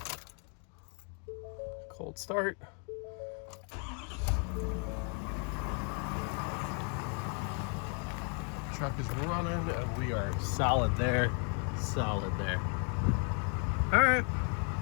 Cold start. Truck is running and we are solid there. Solid there. All right.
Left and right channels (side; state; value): right; quieter; 39.5 dB